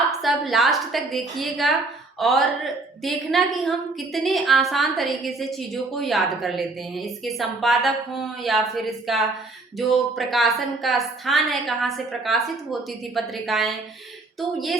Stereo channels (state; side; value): quieter; left; 3.3 dB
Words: सब लास्ट तक देखिएगा और देखना कि हम कितने आसान तरीके से चीज़ों को याद कर लेते हैं। इसके संपादक हों या फिर इसका जो प्रकाशन का स्थान है, कहाँ से प्रकाशित होती थी पत्रिकाएं, तो ये